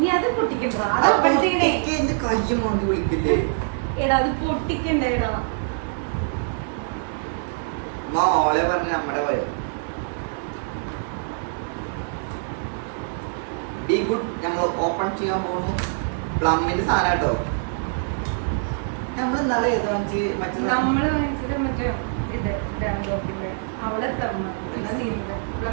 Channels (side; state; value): left; silent; digital silence